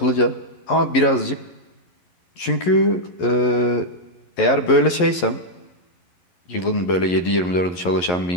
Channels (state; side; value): late; right; 11 ms